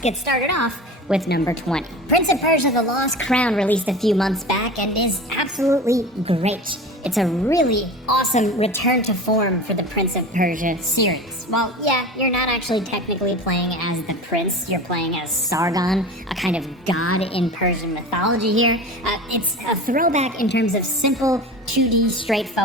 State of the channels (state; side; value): normal; both; correlation 0.33